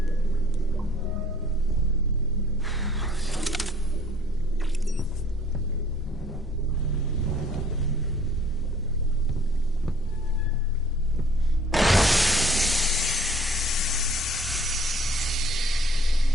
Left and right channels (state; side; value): normal; both; correlation 0.56